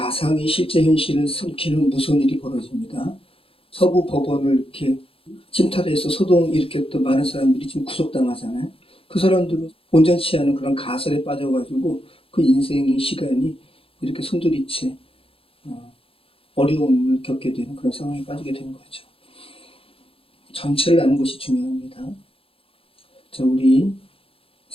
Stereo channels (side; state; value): right; late; 0.27 ms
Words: 실제 현실을 숨기는 무서운 일이 벌어집니다. 서부 법원을 이렇게 침탈해서 소동 일으켰던 많은 사람들이 지금 구속당하잖아요. 그 사람들은 온전치 않은 그런 가설에 빠져가지고 그 인생의 시간이 이렇게 송두리째 어려움을 겪게 되는 그런 상황에 빠지게 되는 거죠. 전체를 아는 것이 중요합니다. 자, 우리